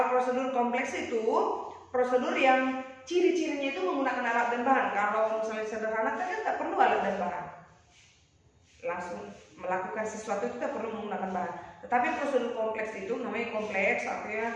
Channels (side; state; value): both; identical; correlation 1.00